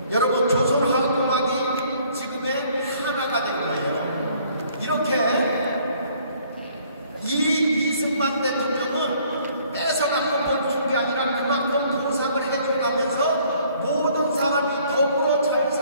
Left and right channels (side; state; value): both; inverted; correlation -0.60